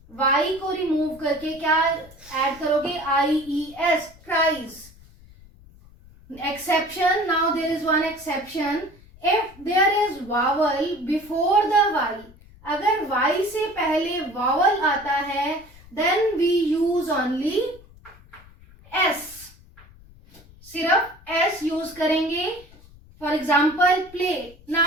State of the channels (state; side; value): noise; left; rumble, 23 dB below the sound